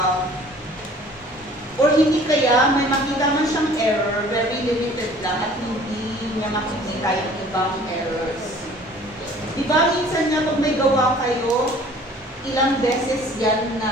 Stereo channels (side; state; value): both; normal; correlation 0.51